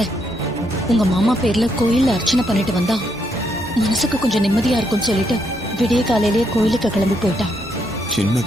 உங்க மாமா பேர்ல கோயில்ல அர்ச்சனை பண்ணிட்டு வந்தா மனசுக்கு கொஞ்சம் நிம்மதியா இருக்கும்னு சொல்லிட்டு விடிய காலையிலேயே கோயிலுக்கு கிளம்பி போயிட்டா.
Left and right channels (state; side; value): normal; both; correlation 0.76